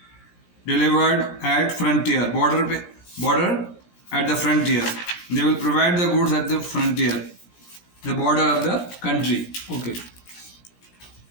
delivered at frontier, border at the frontier. They will provide the goods at the frontier. the border of the country. Okay.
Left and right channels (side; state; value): right; late; 17 ms